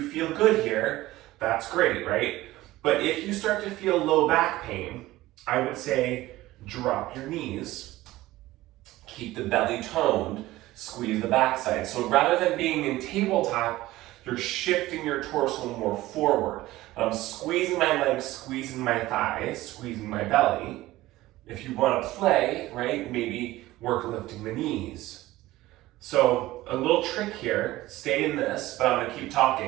feel good here, that's great, right? But if you start to feel low back pain, I would say drop your knees, keep the belly toned, squeeze the backside. So rather than being in tabletop, you're shifting your torso more forward. I'm squeezing my legs, squeezing my thighs, squeezing my belly. If you want to play, right, maybe work lifting the knees. So a little trick here, stay in this, but I'm going to keep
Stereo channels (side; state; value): left; quieter; 17.2 dB